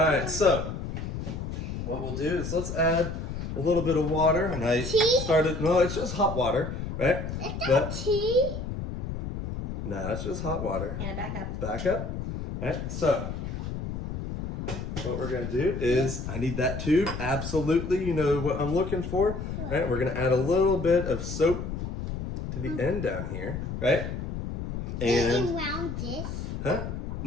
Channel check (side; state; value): left; noise; rumble, 5 dB below the sound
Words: so, what we'll do is let's add a little bit of water. And I Tea? started, no, it's just hot water, right? Is that tea? No, it's just hot water. And back up. Back up. Alright, so, what we're going to do is, I need that tube, absolutely, you know what I'm looking for. Right, we're going to add a little bit of soap to the end down here, right? And And, around this. huh?